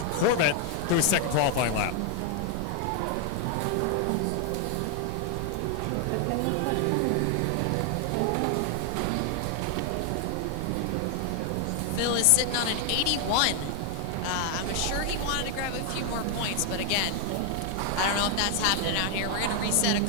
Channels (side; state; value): both; different; correlation 0.00